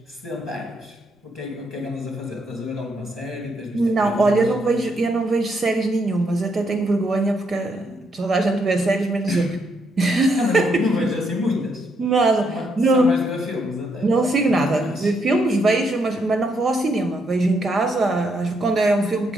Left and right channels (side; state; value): both; normal; correlation 0.76